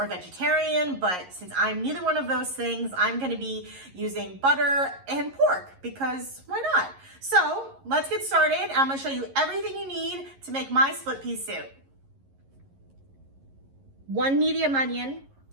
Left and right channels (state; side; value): late; left; 11 ms